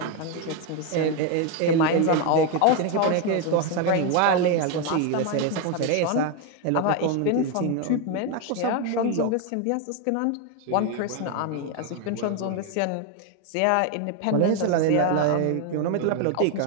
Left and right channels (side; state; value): both; different; correlation 0.01